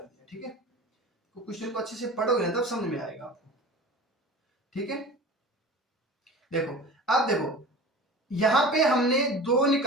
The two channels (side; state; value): both; normal; correlation 0.38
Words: दिया। ठीक है, तो क्वेश्चन को अच्छे से पढ़ोगे ना तब समझ में आएगा आपको। ठीक है, देखो अब देखो यहां पे हमने 2